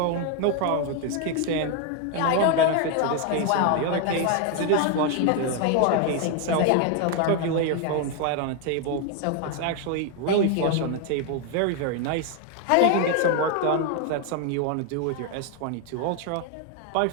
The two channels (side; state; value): both; different; correlation 0.01